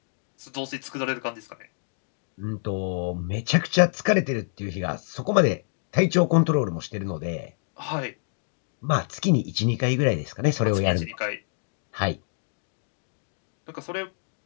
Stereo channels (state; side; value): silent; right; digital silence